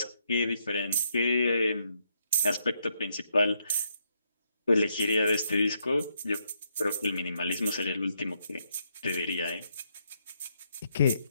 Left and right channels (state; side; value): inverted; both; correlation -0.77